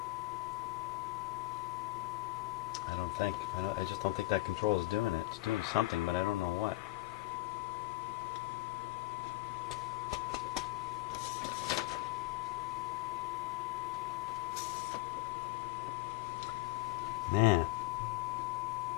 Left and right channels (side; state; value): right; quieter; 18.9 dB